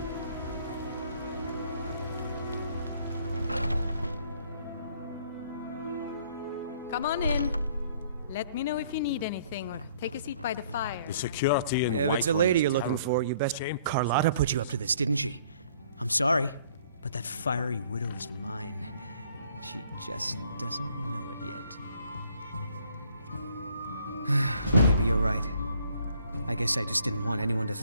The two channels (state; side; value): inverted; both; correlation -0.61